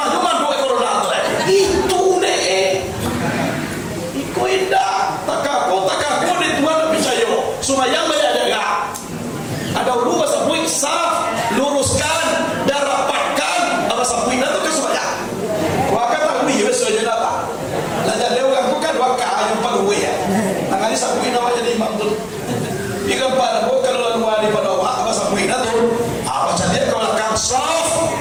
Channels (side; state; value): both; identical; correlation 1.00